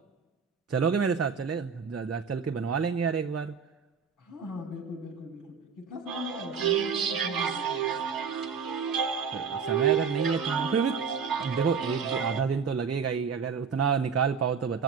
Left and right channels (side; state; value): left; quieter; 6.1 dB